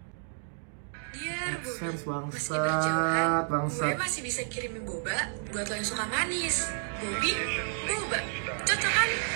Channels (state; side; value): silent; left; 57 dB below the other